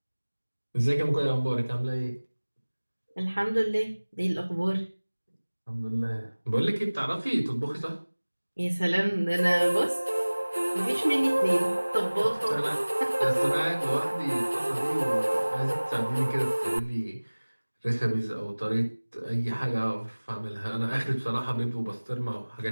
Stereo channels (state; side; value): inverted; both; correlation -1.00